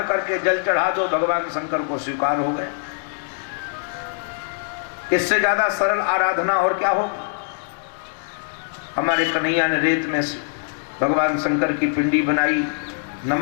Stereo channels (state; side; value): silent; right; digital silence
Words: करके जल चढ़ा दो, भगवान शंकर को स्वीकार हो गए। इससे ज्यादा सरल आराधना और क्या हो। हमारे कन्हैया ने रेत में भगवान शंकर की पिंडी बनाई।